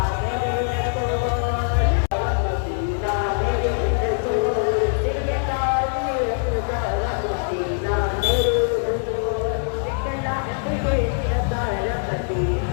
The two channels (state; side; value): silent; right; digital silence